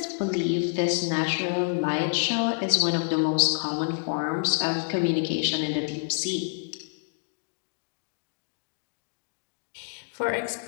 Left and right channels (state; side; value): quieter; right; 37.4 dB